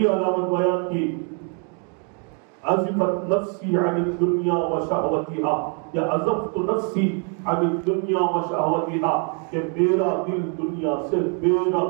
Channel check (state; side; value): quieter; left; 39.5 dB